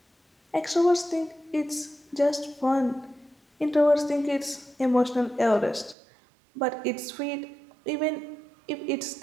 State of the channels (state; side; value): drops out; left; at 6.0 s